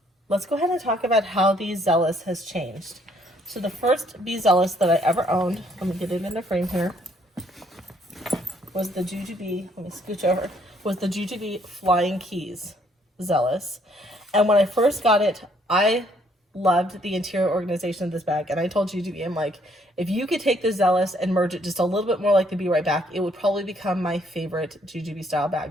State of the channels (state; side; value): normal; both; correlation 0.66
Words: Let's go ahead and talk about how the Zealous has changed. So the first Be Zealous that I ever owned, let me get it in the frame here, was the JuJuBe, let me scooch over, was the JuJuBe Flying Keys Zealous. And when I first got it, I loved the interior organization of this bag. And I told JuJuBe, I'm like, if you could take the Zealous and merge it just a little bit more like the Be Right Back, it would probably become my favorite JuJuBe style